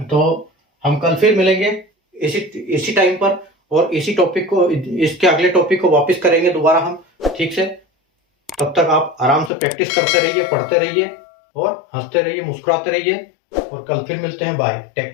हम कल फिर मिलेंगे इसी टाइम पर, और इसी टॉपिक को, इसके अगले टॉपिक को वापस करेंगे दोबारा हम ठीक से। तब तक आप आराम से प्रैक्टिस करते रहिए, पढ़ते रहिए, और हंसते रहिए, मुस्कुराते रहिए, और कल फिर मिलते हैं। बाय, टेक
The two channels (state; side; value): drops out; right; at 9.5 s